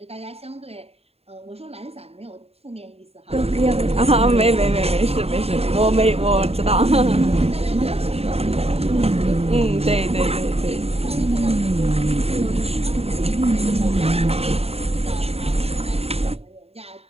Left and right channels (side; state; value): left; late; 0.29 ms